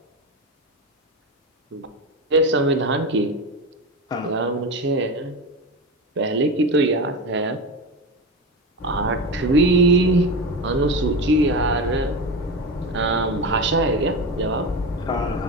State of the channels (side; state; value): both; normal; correlation 0.21